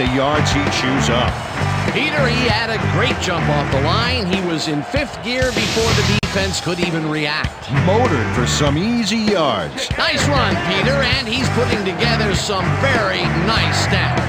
yards he chews up. Peter, he had a great jump off the line. He was in fifth gear before the defense could even react. Motored for some easy yards. Nice run, Peter, and he's putting together some very nice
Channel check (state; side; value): identical; both; correlation 1.00